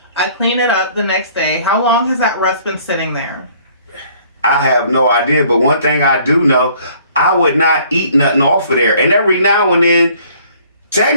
I clean it up the next day. How long has that rust been sitting there? I have no idea, but one thing I do know, I would not eat nothing off of there. And every now and then,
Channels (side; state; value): both; inverted; correlation -0.58